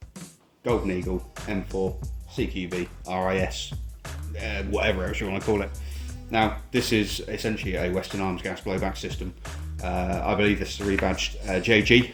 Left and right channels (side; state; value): both; identical; correlation 1.00